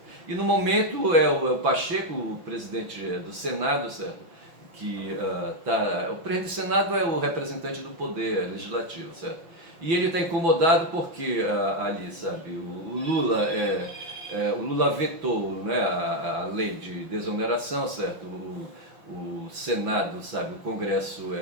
E no momento é o Pacheco, o presidente do Senado, certo? O presidente do Senado é o representante do poder legislativo, certo? E ele está incomodado porque ali, sabe, o Lula vetou, né, a lei de desoneração, certo? O Senado, sabe, o Congresso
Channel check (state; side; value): late; left; 6.0 ms